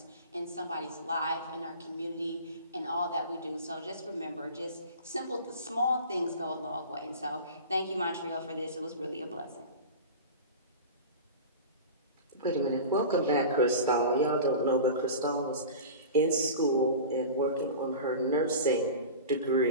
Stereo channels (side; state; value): both; inverted; correlation -0.34